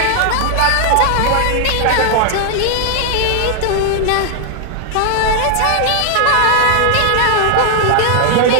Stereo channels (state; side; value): different; both; correlation 0.00